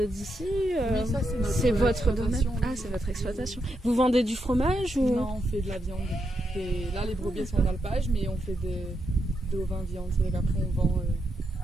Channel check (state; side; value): normal; both; correlation 0.82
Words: Oui, ça c'est votre domaine. exploitation. Ah, c'est votre exploitation. Vous vendez du fromage ou... Non, on fait de la viande. Et là, les brebis sont dans le page, mais on fait de vin viande. C'est qu'après on vend.